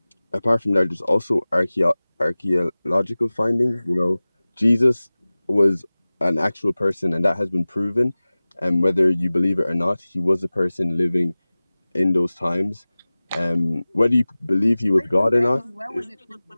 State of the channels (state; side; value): inverted; both; correlation -0.98